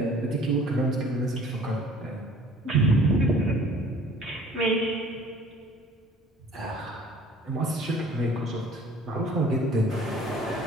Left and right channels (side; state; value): both; normal; correlation 0.51